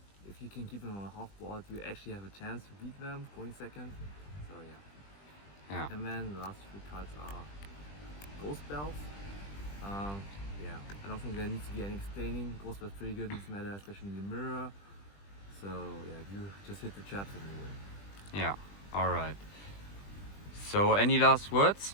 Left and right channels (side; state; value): right; late; 20 ms